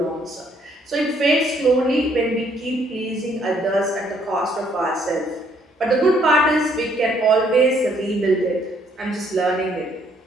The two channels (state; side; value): normal; both; correlation 0.67